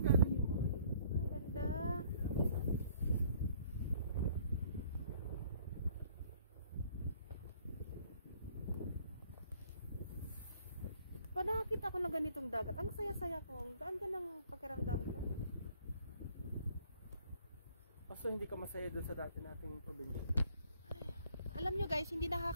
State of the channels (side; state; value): both; inverted; correlation -0.59